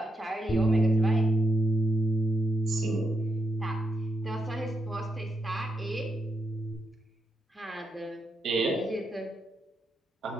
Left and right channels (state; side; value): normal; both; correlation 0.82